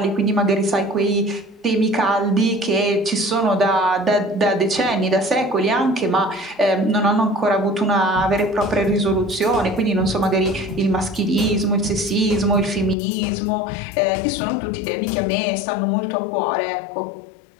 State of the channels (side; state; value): right; drops out; at 13.0 s